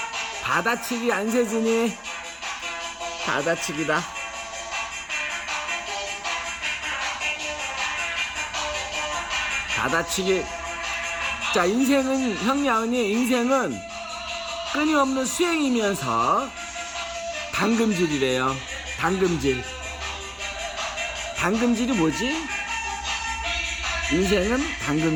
받아치기 안세진이 받아치기다. 받아치기. 자, 인생은, 형님 아버님, 인생은 끊임없는 수행이면서 당금질이래요. 당금질. 당금질이 뭐지? 인생은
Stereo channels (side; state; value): both; identical; correlation 1.00